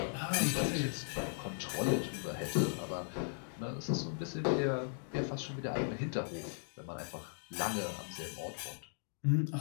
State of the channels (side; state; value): right; silent; digital silence